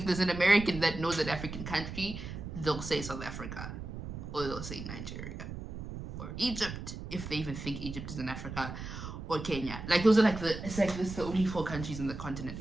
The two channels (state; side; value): noise; right; rumble, 8 dB below the sound